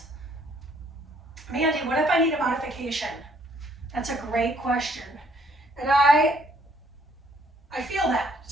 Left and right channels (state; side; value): normal; both; correlation 0.65